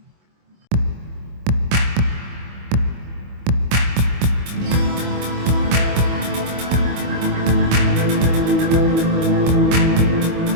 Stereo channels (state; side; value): late; left; 25 ms